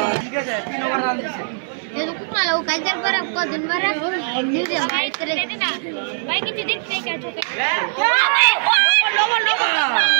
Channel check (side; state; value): left; silent; 62 dB below the other